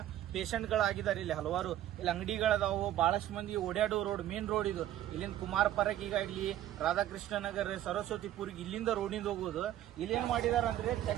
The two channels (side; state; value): left; quieter; 12.6 dB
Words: ಪೇಷಂಟ್ಗಳಾಗಿದ್ದಾರೆ. ಇಲ್ಲಿ ಹಲವಾರು ಇಲ್ಲಿ ಅಂಗಡಿಗಳದಾವು, ಬಹಳಷ್ಟು ಮಂದಿ ಓಡಾಡೋ ರೋಡ್, ಮೇನ್ ರೋಡ್ ಇದು. ಇಲ್ಲಿಂದ ಕುಮಾರ ಪರಕಿಗಾಗ್ಲಿ, ರಾಧಾಕೃಷ್ಣ ನಗರ್, ಸರಸ್ವತಿಪುರಿಗೆ ಇಲ್ಲಿಂದ ರೋಡಿಂದ ಹೋಗೋದು. ಇಲ್ಲೇನ್ ಮಾಡಿದಾರೆ ಅಂದ್ರೆ